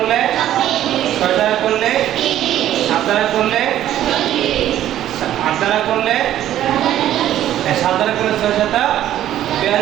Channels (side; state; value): left; quieter; 12.2 dB